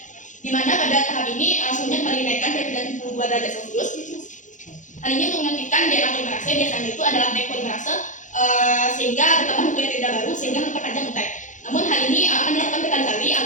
di mana pada tahap ini suhunya kembali dinaikkan ke 32 derajat Celcius. Hal ini untuk mengaktifkan DNA polimerase, biasanya itu adalah back polimerase, sehingga bertambah nukleotida baru sehingga memperpanjang untai. Namun hal ini akan dilakukan berkali-kali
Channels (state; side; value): late; right; 0.36 ms